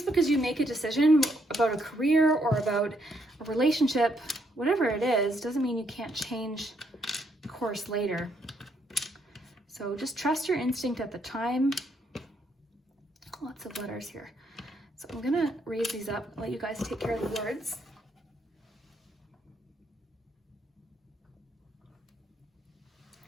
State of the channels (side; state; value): both; normal; correlation 0.74